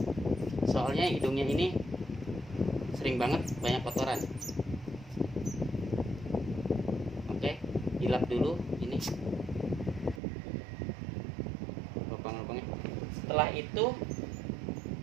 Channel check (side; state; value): left; drops out; at 10.2 s